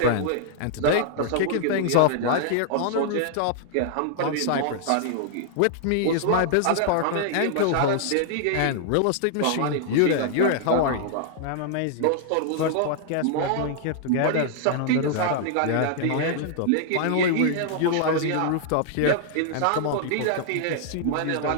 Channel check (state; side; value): different; both; correlation -0.01